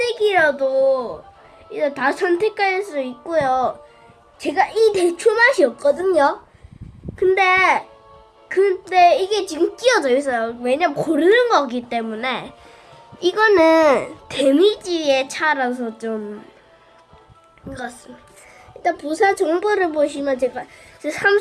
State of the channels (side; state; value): both; identical; correlation 1.00